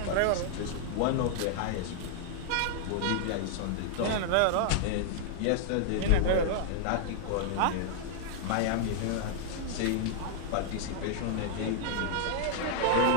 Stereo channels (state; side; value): different; both; correlation -0.01